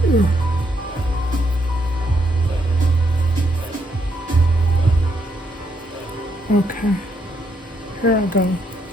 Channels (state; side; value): normal; both; correlation 0.75